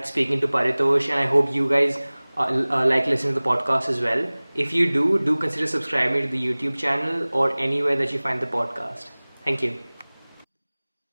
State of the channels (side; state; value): both; inverted; correlation -1.00